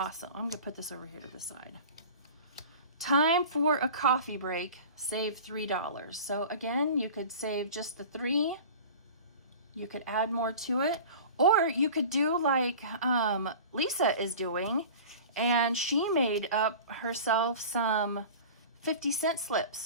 I'm gonna put this over here to the side. Time for a coffee break. Save $3. So again, you could save just the 3. You could add more to it, or you could do like Lisa is doing, and she made up herself some 50-cent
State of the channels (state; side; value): inverted; both; correlation -0.38